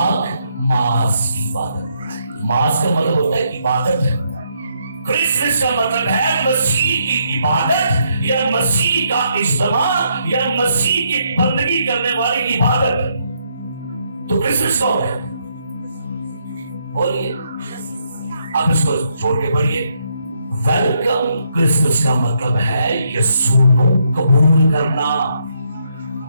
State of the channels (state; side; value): inverted; both; correlation -0.75